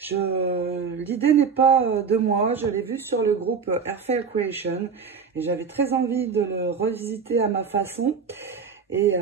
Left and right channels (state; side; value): quieter; left; 5.9 dB